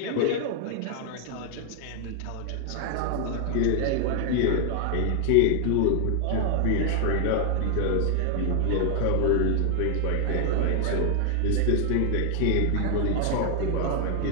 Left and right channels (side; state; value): both; different; correlation 0.00